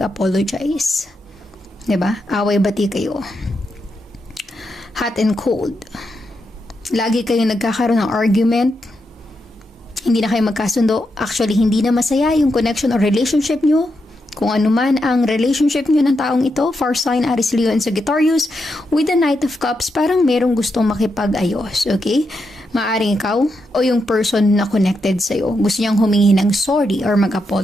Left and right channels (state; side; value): normal; both; correlation 0.84